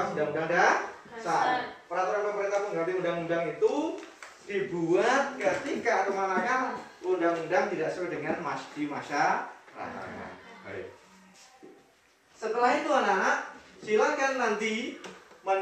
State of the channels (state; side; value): identical; both; correlation 1.00